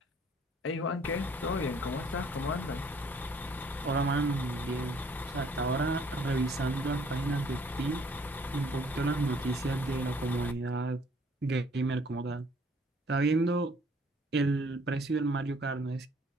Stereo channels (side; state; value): both; normal; correlation 0.60